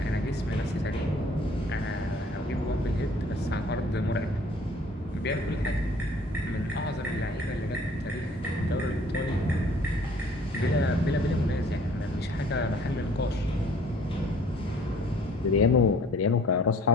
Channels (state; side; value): normal; both; correlation 0.55